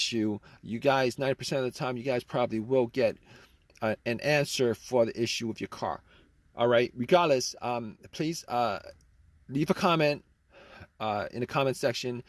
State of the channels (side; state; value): both; identical; correlation 1.00